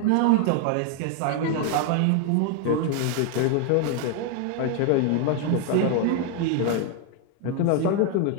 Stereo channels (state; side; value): different; both; correlation 0.01